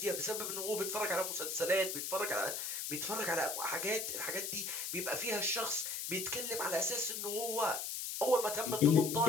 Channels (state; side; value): noise; left; hiss, 4 dB below the sound